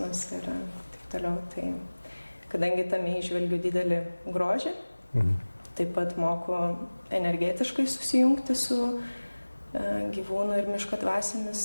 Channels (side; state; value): both; inverted; correlation -1.00